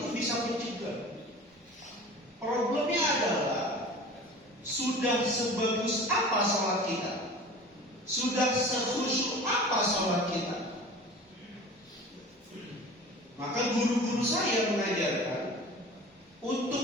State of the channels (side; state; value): both; normal; correlation 0.40